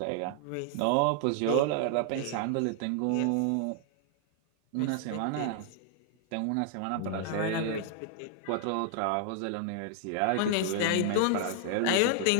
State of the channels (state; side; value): different; both; correlation 0.00